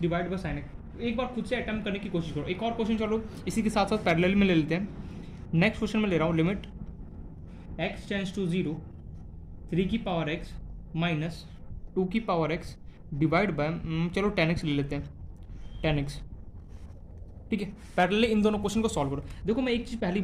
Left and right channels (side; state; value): both; identical; correlation 1.00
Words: divide by sine x। एक बार खुद से अटेम्प्ट करने की कोशिश करो। एक और क्वेश्चन चलो इसी के साथ साथ पैरेलल में ले लेते हैं। नेक्स्ट क्वेश्चन में ले रहा हूँ, लिमिट x टेंड्स टू 0 3 की पावर x माइनस 2 की पावर x डिवाइड बाय चलो 10x ले लेते हैं, 10x, ठीक है। पैरेलली इन दोनों क्वेश्चन को सॉल्व करो। देखो मैं एक चीज़ पहले ही